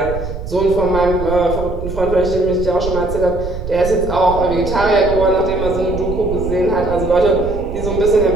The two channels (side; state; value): right; noise; rumble, 7 dB below the sound